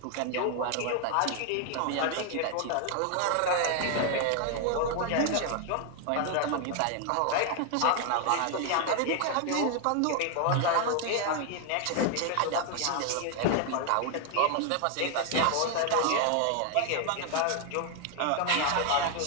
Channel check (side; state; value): both; different; correlation 0.00